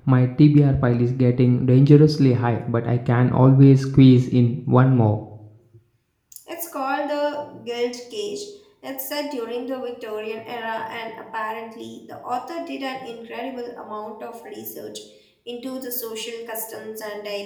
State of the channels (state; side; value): identical; both; correlation 1.00